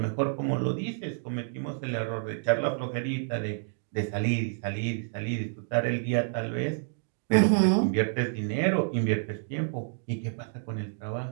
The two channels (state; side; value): silent; left; digital silence